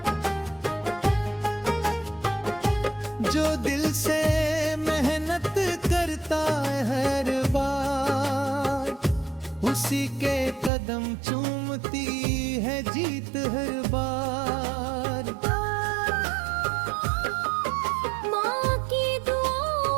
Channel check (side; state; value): left; drops out; at 10.7 s